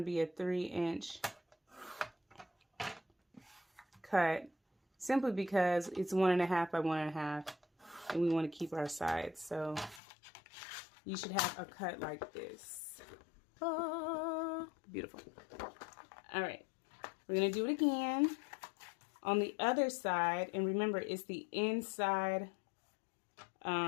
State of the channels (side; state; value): right; drops out; at 10.0 s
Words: be a 3 inch cut. Simply because it's 1.5 by 1.5. And we want to keep our sides. So you should have a cut like this. Oh, beautiful. All right. We're going to do it again On the other side, and remember, it's the inside,